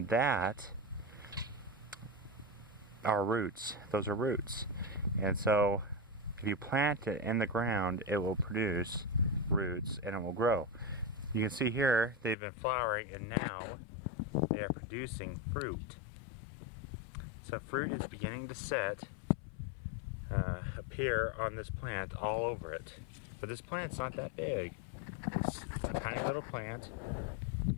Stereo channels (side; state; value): right; drops out; at 12.4 s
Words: that are roots. Those are roots. And so if you plant it in the ground, it will produce roots and it will grow. You can see here they've been flowering and now they are producing fruit. So fruit is beginning to appear on this plant all over it. But this plant's not that big. It's a tiny little plant,